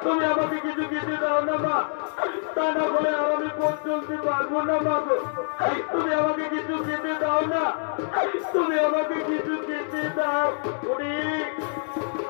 তুমি আমাকে কিছু খেতে দাও না মা, তা না বলে আর আমি পথ চলতে পারবো না মা গো। তুমি আমাকে কিছু খেতে দাও না, তুমি আমাকে কিছু খেতে দাও।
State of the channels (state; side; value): silent; right; 59 dB below the other